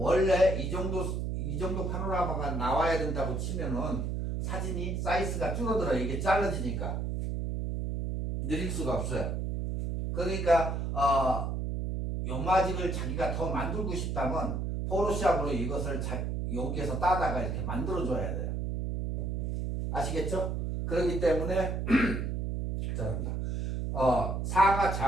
이 정도 파노라마가 나와야 된다고 치면은 사진이 사이즈가 줄어들어요. 이게 잘라지니까 느릴 수가 없어요. 그러니까 요마직을 자기가 더 만들고 싶다면 포토샵으로 이것을 여기에서 따다가 이렇게 만들어 줘야 돼요. 아시겠죠? 그렇기 때문에 죄송합니다. 상하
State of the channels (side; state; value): right; noise; hum, 1 dB below the sound